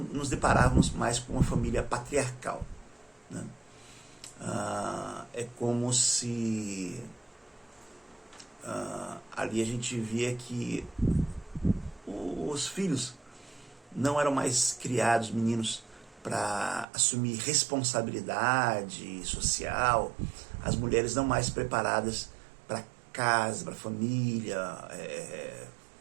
deparávamos mais com uma família patriarcal. É como se ali a gente via que os filhos não eram mais criados, meninos, para assumir responsabilidade social, as mulheres não mais preparadas para casa, para família,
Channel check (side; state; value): left; drops out; at 16.9 s